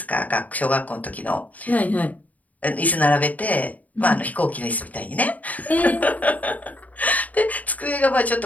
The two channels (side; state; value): right; late; 0.074 ms